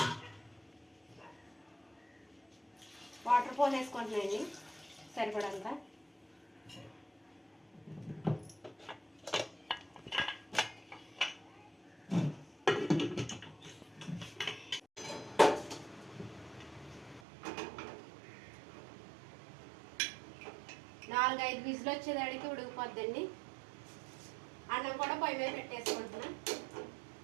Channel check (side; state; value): left; drops out; at 17.2 s